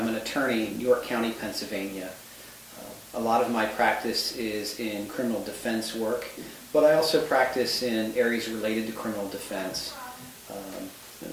an attorney in York County, Pennsylvania. A lot of my practice is in criminal defense work, but I also practice in areas related to criminal defense.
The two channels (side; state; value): both; identical; correlation 1.00